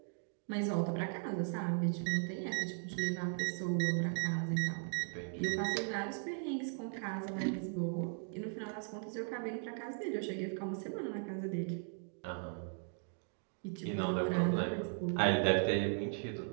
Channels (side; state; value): left; silent; 53 dB below the other